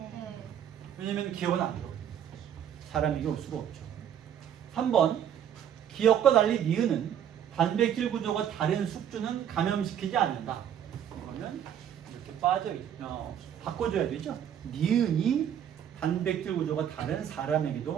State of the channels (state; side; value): quieter; left; 9.6 dB